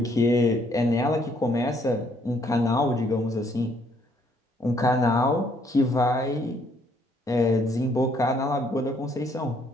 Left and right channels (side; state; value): both; normal; correlation 0.67